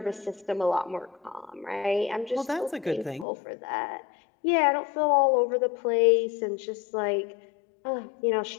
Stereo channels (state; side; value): drops out; right; at 3.2 s